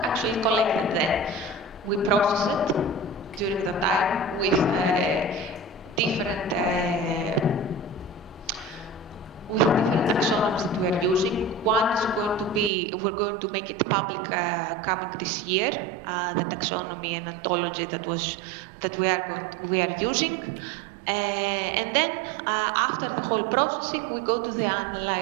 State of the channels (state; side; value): drops out; left; at 12.7 s